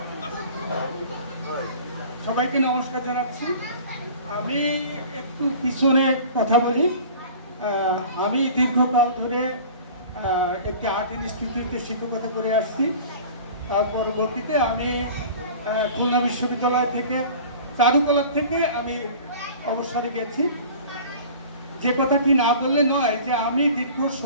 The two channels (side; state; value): both; inverted; correlation -0.42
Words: সবাইকে নমস্কার জানাচ্ছি। আমি একটু পিছনে কথা বলি। আমি দীর্ঘকাল ধরে একটি আর্ট ইনস্টিটিউটে শিক্ষকতা করে আসছি। পরবর্তীতে আমি খুলনা বিশ্ববিদ্যালয় থেকে চারুকলার থেকে আমি অবসরে গেছি। যে কথাটি না বললে নয় যে আমি দীর্ঘ